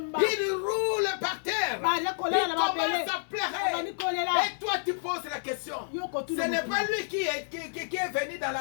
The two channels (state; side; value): silent; right; digital silence